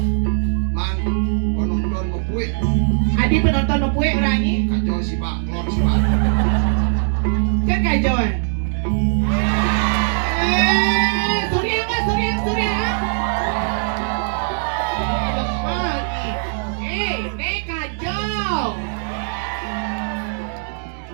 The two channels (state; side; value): silent; left; 66 dB below the other